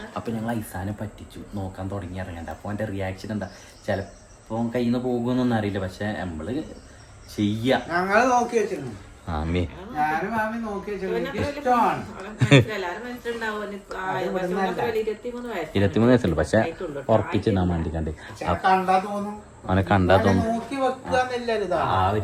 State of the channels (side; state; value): both; identical; correlation 1.00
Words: അപ്പൊ ഞങ്ങൾ ഐസാനെ പറ്റിച്ചു നോക്കാൻ തുടങ്ങി ഇറങ്ങണ്ട. അപ്പൊ അവന്റെ റിയാക്ഷൻ എന്താ, ചിലപ്പോ കയ്യിൽ നിന്ന് പോകുമെന്നൊന്നും അറിയില്ല, പക്ഷെ നമ്മള് ചെയ്യാ. ആമി 23 വയസ്സുണ്ട്, പക്ഷെ ഉറപ്പിച്ചിടാൻ വേണ്ടി കണ്ട് അവനെ കണ്ടാ തോന്നും. ആ ഒരു